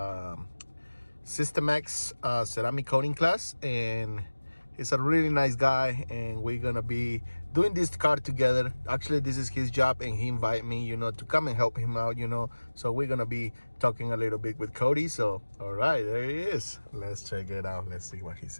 System X ceramic coating class, and he's a really nice guy, and we're gonna be doing this car together. Actually, this is his job, and he invited me, to come and help him out, So we're gonna be talking a little bit with Cody. So, all right, there he is. Let's check it out. Let's see what he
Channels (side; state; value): both; inverted; correlation -1.00